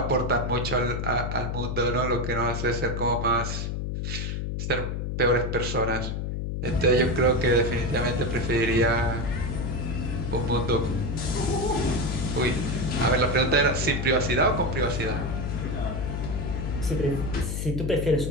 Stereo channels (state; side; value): noise; left; hum, 2 dB below the sound